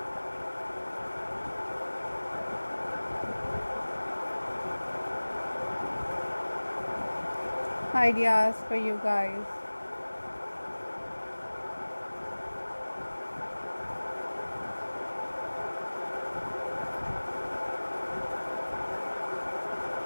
ideas for you guys.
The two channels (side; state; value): both; inverted; correlation -1.00